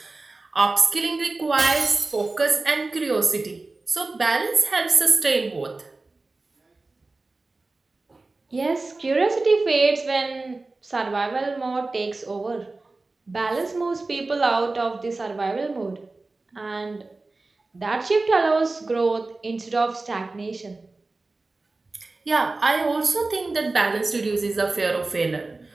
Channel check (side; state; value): left; quieter; 3.4 dB